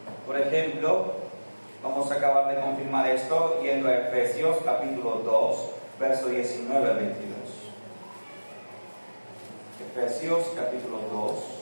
Por ejemplo, vamos a acabar de confirmar esto yendo a Efesios capítulo 2, verso 19 al 22. Efesios capítulo 2,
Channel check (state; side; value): inverted; both; correlation -1.00